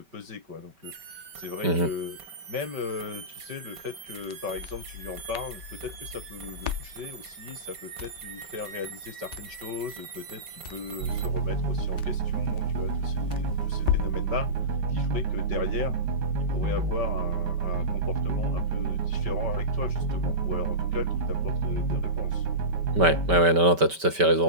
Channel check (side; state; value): left; late; 5.2 ms